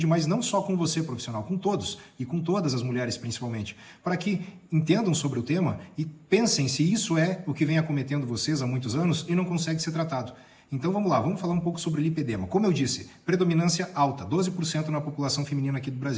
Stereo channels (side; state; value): both; identical; correlation 1.00